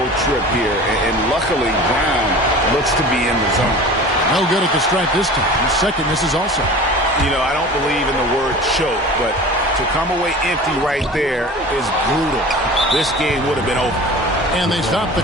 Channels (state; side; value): normal; both; correlation 0.38